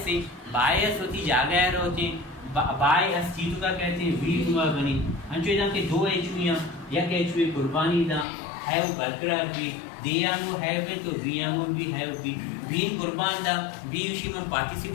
होती जागैर होती बाय अस्तित्व का कहते हैं वी हुआ बनी अंचो इधम के दो एचवियाँ या के एचवी कुर्बानी दा हैव बरकरार भी दियांगो हैव तो वियांगो भी हैव भी बीन कुर्बान दा बी उसी में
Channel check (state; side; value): drops out; right; at 8.2 s